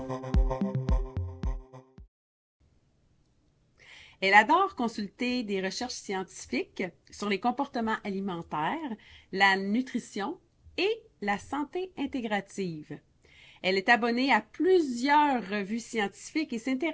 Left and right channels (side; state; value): both; identical; correlation 1.00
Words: Elle adore consulter des recherches scientifiques sur les comportements alimentaires, la nutrition et la santé intégrative. Elle est abonnée à plusieurs revues scientifiques et